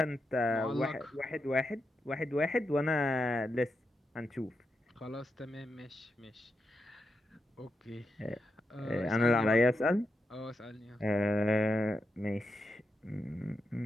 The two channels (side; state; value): both; normal; correlation 0.86